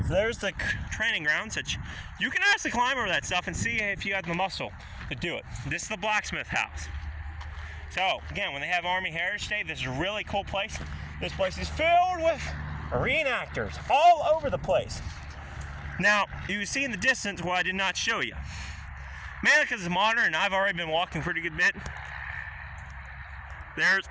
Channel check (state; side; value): identical; both; correlation 1.00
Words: So there's the training grounds that you can actually climb over that stuff and see if you have the muscle to do it. This is the blacksmith house. So, again, when they have Army Heritage Day, this is a really cool place. This place is filled with reenactors all over the place. Now, you see in the distance what I did not show you. Mainly because it's modern and I've already been walking a pretty good bit. There's